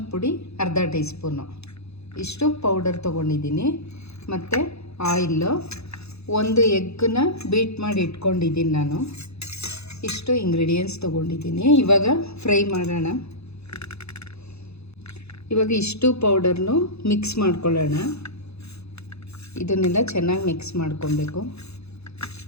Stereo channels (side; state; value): right; late; 0.79 ms